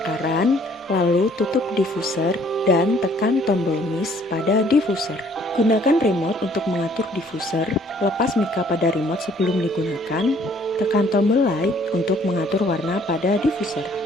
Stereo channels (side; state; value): both; normal; correlation 0.60